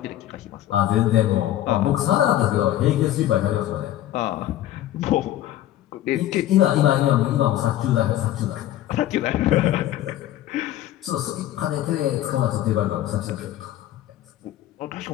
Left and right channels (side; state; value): right; quieter; 13.3 dB